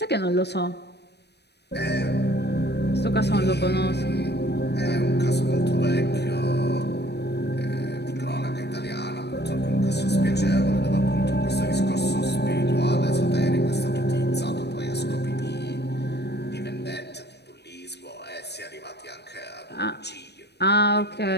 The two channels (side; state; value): right; late; 0.49 ms